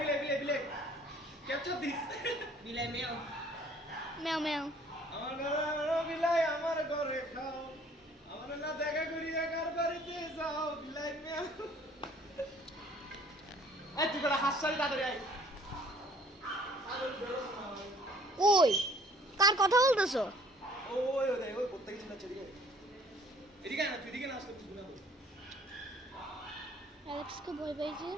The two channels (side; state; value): both; normal; correlation 0.57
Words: Capture this. Bilay meow. Meow meow. আমার বিলাই আমার ঘরে খাও আমার না দেখা করিয়া কার বাড়িতে যাও বিলাই মেও এই তুই বড় হাসছালি তাড়াতাড়ি আয় ওই কার কথা বলতেছো? ওই করতে গেছিস না এদিকে এদিকে না তুই এদিকে না আসলে কিছু না অ্যালেক্স কে ভয় পাইছে।